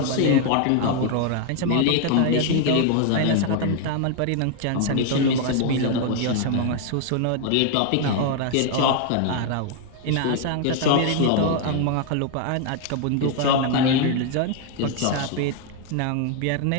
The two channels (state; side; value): different; both; correlation 0.00